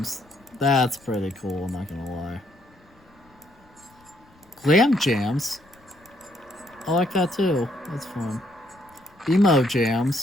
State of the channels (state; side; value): noise; left; rumble, 30 dB below the sound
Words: That's pretty cool, I'm not gonna lie. Glam Jams. I like that too. That's fun. Emo